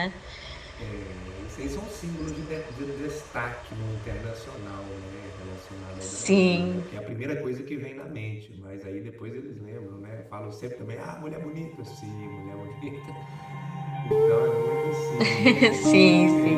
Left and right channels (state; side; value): identical; both; correlation 1.00